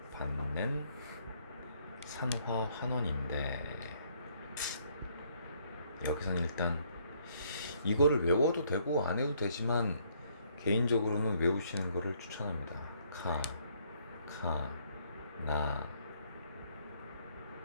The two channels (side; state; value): both; inverted; correlation -0.67